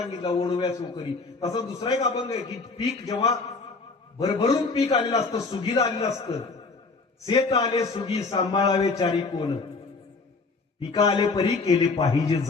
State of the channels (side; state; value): right; quieter; 4.0 dB